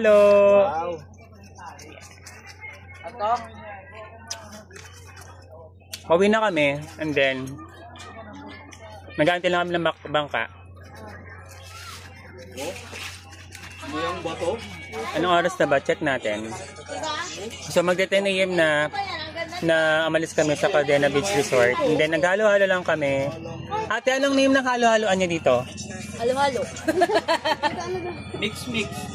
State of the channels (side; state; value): both; identical; correlation 1.00